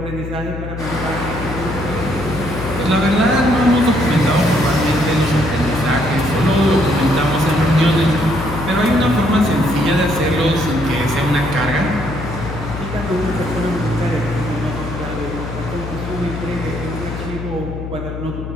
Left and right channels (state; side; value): noise; left; hum, 7 dB below the sound